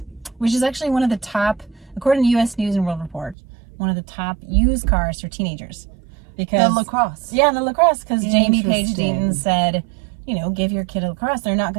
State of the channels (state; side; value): drops out; left; at 3.4 s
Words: which is actually one of the top, according to U.S. News and World Report, one of the top used cars for teenagers. Because The LaCrosse. Yeah, the LaCrosse. Because Jamie Page Interesting. Deaton said, you know, give your kid a LaCrosse. They're not